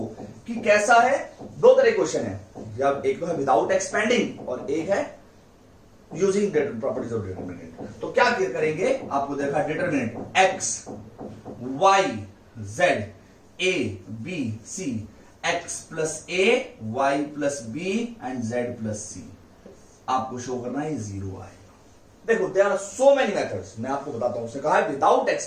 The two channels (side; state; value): both; identical; correlation 1.00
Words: कि कैसा है, दो तरह क्वेश्चन है, या एक तो है विदाउट एक्सपेंडिंग और एक है यूजिंग प्रॉपर्टीज ऑफ डिटरमिनेंट। तो क्या करेंगे, आपको देखा determinant X Y Z A B C, X plus A Y plus B and Z plus C, आपको शो करना है जीरो आएगा। देखो there are so many methods, मैं आपको बताता हूं। उसने कहा है विदाउट